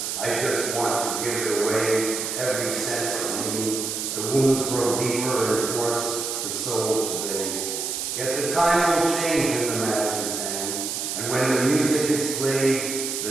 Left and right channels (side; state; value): right; noise; hiss, 3 dB below the sound